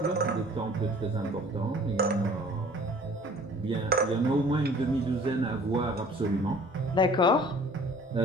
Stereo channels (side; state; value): both; normal; correlation 0.50